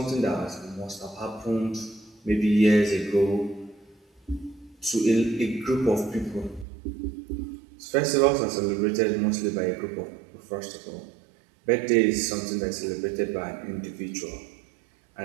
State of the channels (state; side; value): drops out; left; at 6.7 s